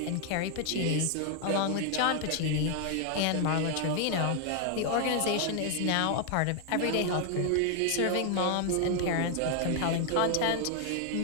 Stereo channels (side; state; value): both; different; correlation 0.00